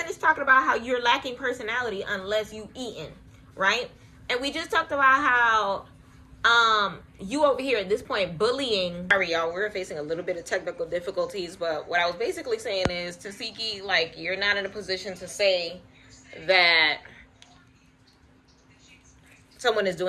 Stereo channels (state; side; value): identical; both; correlation 1.00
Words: talking about how you're lacking personality unless you eating, right? And we just talked about how you over here at this point bullying. Sorry, y'all, we're facing a little bit of technical difficulties, but what I was basically saying is, Tasiki, like, you're not in a position to say that someone is